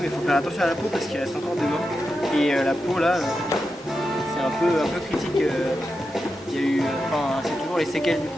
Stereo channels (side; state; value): both; normal; correlation 0.89